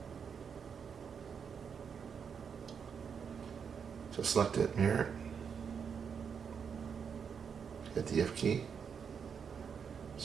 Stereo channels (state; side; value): quieter; left; 6.7 dB